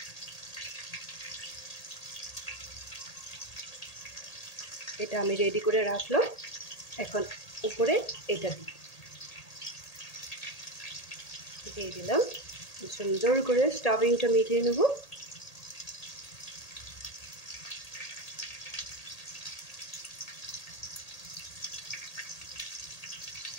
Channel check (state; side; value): late; right; 1.8 ms